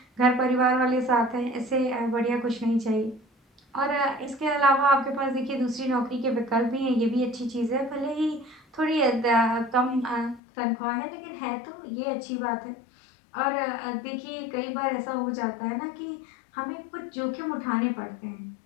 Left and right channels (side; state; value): right; drops out; at 10.4 s